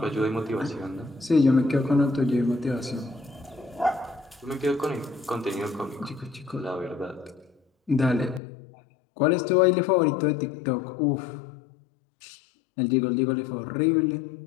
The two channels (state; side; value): drops out; right; at 8.4 s